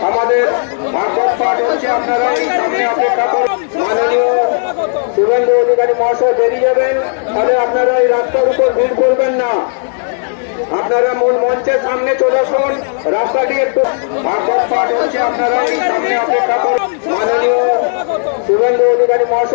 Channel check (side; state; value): right; silent; digital silence